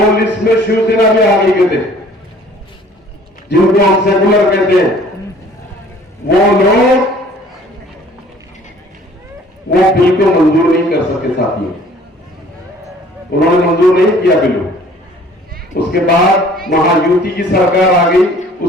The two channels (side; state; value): both; normal; correlation 0.54